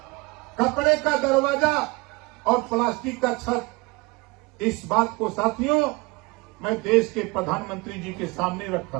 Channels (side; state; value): left; quieter; 25.5 dB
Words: कपड़े का दरवाजा और प्लास्टिक का छत। इस बात को साथियों मैं देश के प्रधानमंत्री जी के सामने